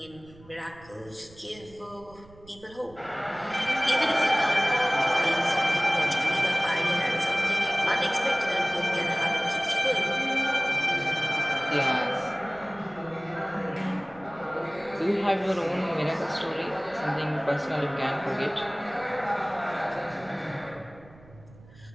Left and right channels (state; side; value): noise; right; rumble, 23 dB below the sound